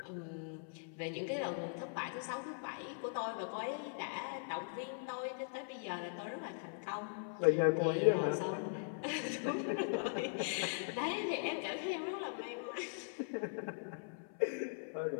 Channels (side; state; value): right; silent; 51 dB below the other